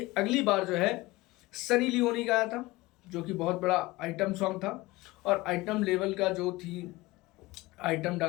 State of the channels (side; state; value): right; quieter; 20.3 dB